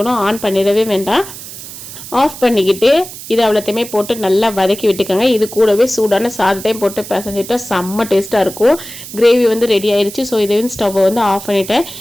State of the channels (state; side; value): noise; right; hiss, 13 dB below the sound